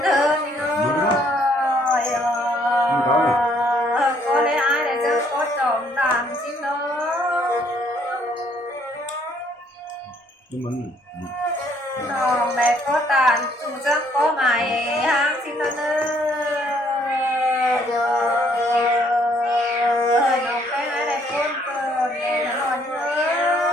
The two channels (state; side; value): normal; both; correlation 0.65